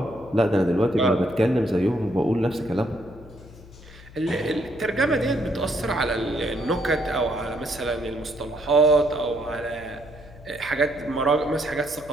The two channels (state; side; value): noise; left; hum, 20 dB below the sound